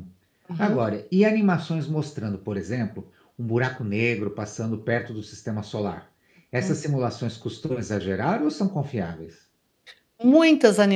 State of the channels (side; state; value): both; identical; correlation 1.00